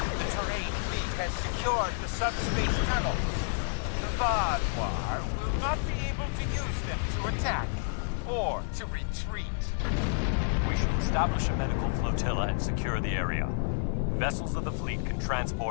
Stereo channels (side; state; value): right; silent; digital silence